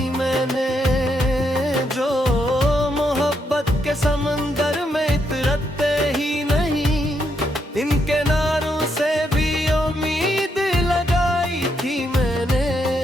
मैंने, जो मोहब्बत के समंदर में इतरते ही नहीं। इन किनारों से भी उम्मीद लगाई थी मैंने।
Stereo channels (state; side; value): normal; both; correlation 0.78